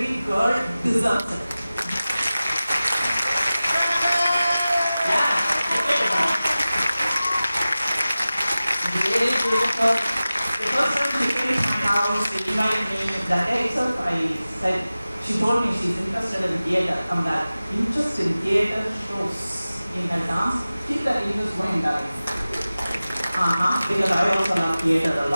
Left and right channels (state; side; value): inverted; both; correlation -0.96